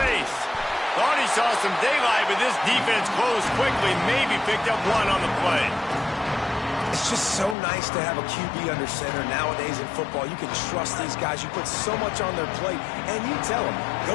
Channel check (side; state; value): right; drops out; at 7.6 s